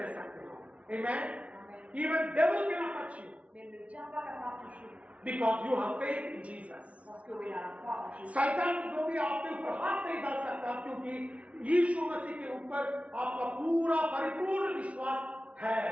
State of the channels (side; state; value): left; late; 0.064 ms